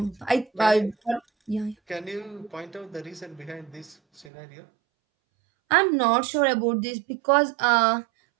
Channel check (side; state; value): left; drops out; at 4.3 s